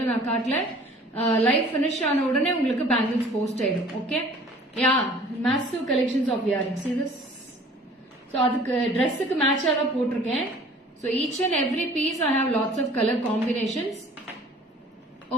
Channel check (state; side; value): normal; both; correlation 0.50